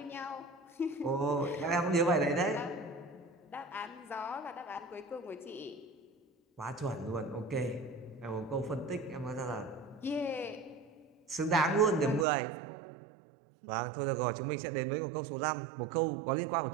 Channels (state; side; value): drops out; left; at 12.2 s